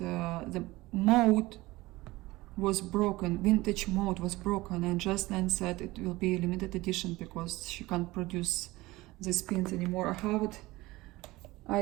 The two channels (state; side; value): quieter; left; 19.7 dB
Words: mode was broken, vintage mode was broken, and Just Nan said it will be a limited edition because she can't produce these pins anymore. I have it.